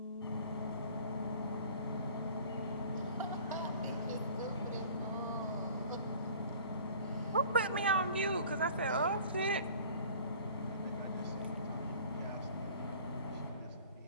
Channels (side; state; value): both; inverted; correlation -0.48